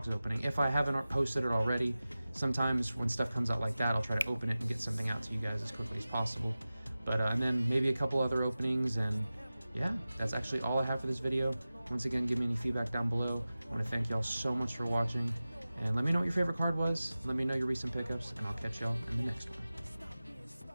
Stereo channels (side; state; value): both; inverted; correlation -0.96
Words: opening, if I haven't posted it already. Sometimes when stuff comes out like that, I'll try to open it and get something out to you guys as quickly as possible. But and then maybe a couple other openings, and yeah, that's actually all I have for this video. Once again, give me any feedback down below. I want to thank y'all so much for watching, and let me know what your favorite card was. Let me know your recent pickups, and I'll catch y'all in the next one.